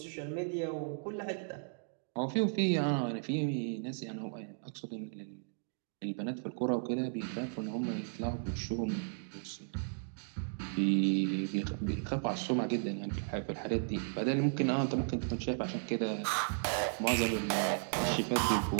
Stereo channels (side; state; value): left; silent; digital silence